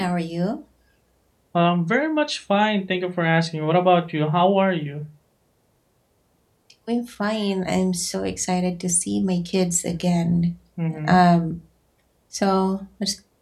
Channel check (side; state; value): both; identical; correlation 1.00